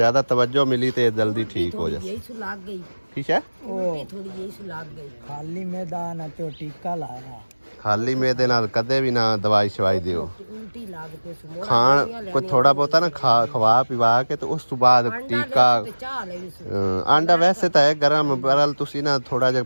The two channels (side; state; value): both; inverted; correlation -1.00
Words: ਤਵੱਜੋ ਮਿਲੀ ਤੇ ਇਹ ਜਲਦੀ ਠੀਕ ਹੋ ਜਾ ਯਹੀ ਸੁ ਲੱਗ ਗਈ ਠੀਕ ਹੈ ਉਹ ਥੋੜੀ ਯਹੀ ਸੁ ਲੱਗ ਗਈ ਖਾਲੀ ਮੈਦਾਨ ਤੇ ਟੀਕਾ ਲਾਇਆ ਖਾਲੀ ਮੇਦੇ ਨਾਲ ਕਦੇ ਵੀ ਨਾ ਦਵਾਈ ਸ਼ਵਾਈ ਦਿਓ ਉਲਟੀ ਲੱਗ ਪਈ ਸੁ ਮੋੜ ਖਾਣ ਕੋਈ ਥੋੜਾ ਬਹੁਤਾ ਨਾ ਖਵਾ ਪਿਵਾ ਕੇ ਤੇ ਉਸ ਤੋਂ ਬਾਅਦ ਟੀਕਾ ਚਾਹ ਲਈ ਸੁ ਆਂਡਾ ਵੈਸੇ ਤਾਂ ਹੈ ਗਰਮ ਬਰਲ ਤੁਸੀਂ ਨਾ ਥੋੜਾ ਜਿਹਾ